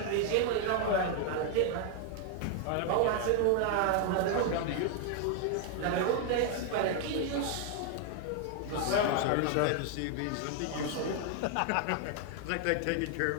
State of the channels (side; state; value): both; different; correlation 0.00